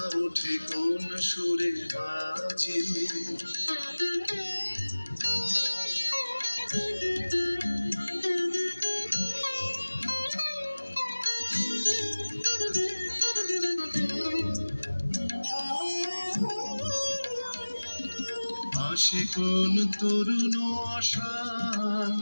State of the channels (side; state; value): both; inverted; correlation -1.00